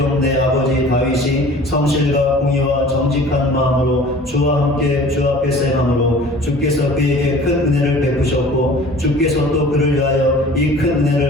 내 아버지 다윗이 성실과 공의와 정직한 마음으로 주와 함께 주 앞에서 행함으로 주께서 그에게 큰 은혜를 베푸셨고 주께서 또 그를 위하여 이 큰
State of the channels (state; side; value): normal; both; correlation 0.45